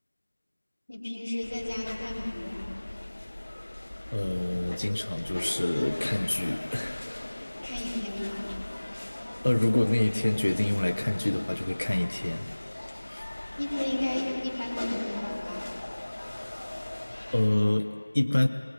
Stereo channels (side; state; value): both; inverted; correlation -1.00